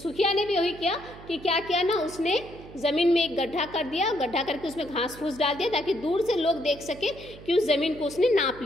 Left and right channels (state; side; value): noise; right; hum, 17 dB below the sound